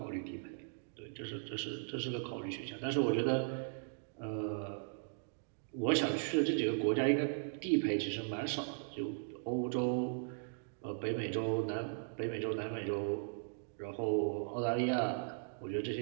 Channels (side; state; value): left; silent; digital silence